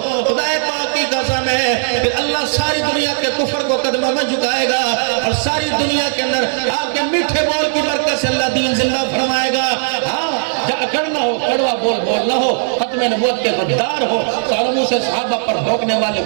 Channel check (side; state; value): left; silent; digital silence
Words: خدا پاک کی قسم ہے, پھر اللہ ساری دنیا کے کفر کو قدموں میں جھکائے گا, اور ساری دنیا کے اندر آپ کے میٹھے بول کی برکت سے اللہ دین زندہ فرمائے گا. ہاں, اکڑنا ہو, کڑوا بول بولنا ہو, ختم نبوت کے غدار ہو, سالموں سے صحابہ پر بھونکنے والے